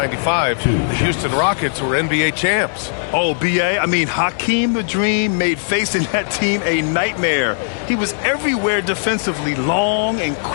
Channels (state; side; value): silent; right; digital silence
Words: the Houston Rockets were NBA champs. Oh, B.A., I mean, Hakeem the Dream made facing that team a nightmare. He was everywhere defensively, long and